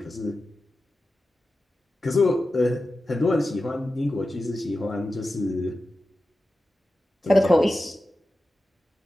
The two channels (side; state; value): both; normal; correlation 0.93